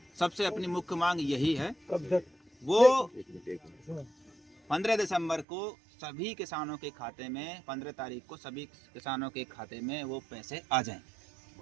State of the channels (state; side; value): drops out; left; at 5.5 s